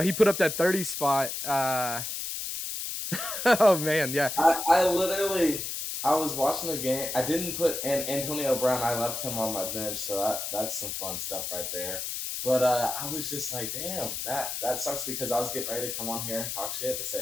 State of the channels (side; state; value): left; noise; hiss, 4 dB below the sound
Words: he put up that 30 spot. Oh man, yeah. I was watching the game. I didn't put Antonio Brown. I left him on my bench, so that's some fun stuff right there. But I was just like, damn, that sucks because I was getting ready to come on here and talk shit and